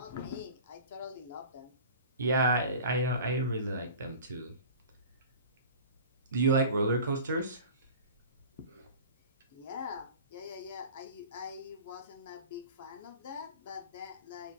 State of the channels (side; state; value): both; inverted; correlation -0.39